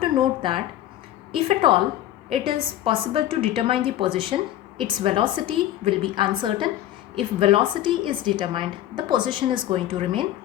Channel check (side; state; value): right; quieter; 12.9 dB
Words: to note that if at all it is possible to determine the position, its velocity will be uncertain. If velocity is determined, the position is going to remain